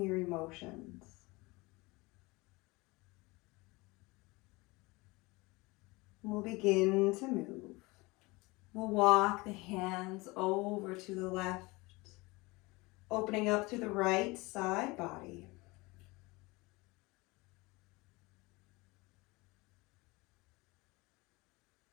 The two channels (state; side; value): quieter; right; 23.7 dB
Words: your emotions. We'll begin to move. We'll walk the hands over to the left Opening up through the right side body.